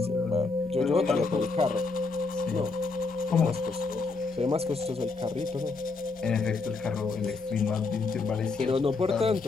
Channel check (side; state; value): right; quieter; 4.0 dB